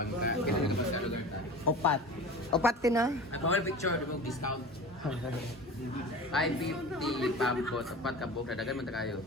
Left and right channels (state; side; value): normal; both; correlation 0.35